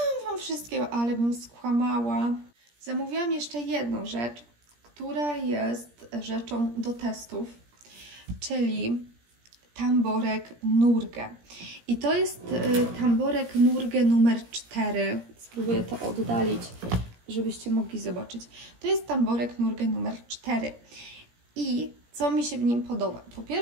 Wam wszystkiego, ale bym skłamała. Zamówiłam jeszcze jedną rzecz, która jest rzeczą do testów, czyli tamborek Nurge. I to jest tamborek Nurge numer 4. Spróbuję to oddalić, żebyście mogli zobaczyć. To jest tamborek Nurge numer 4. I co mi się w nim podoba? Po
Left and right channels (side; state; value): left; late; 17 ms